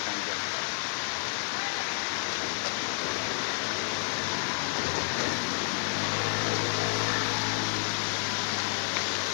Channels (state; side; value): silent; right; 58 dB below the other